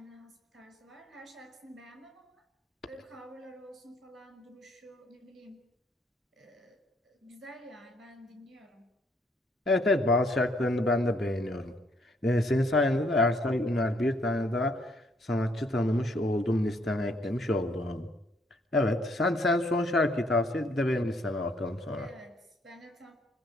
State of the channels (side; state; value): both; normal; correlation 0.68